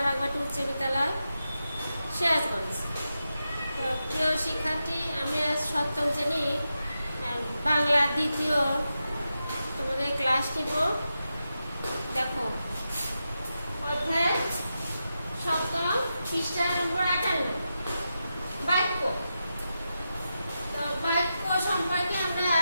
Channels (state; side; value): inverted; both; correlation -0.89